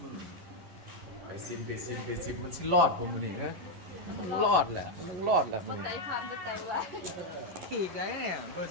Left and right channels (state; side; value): late; left; 11 ms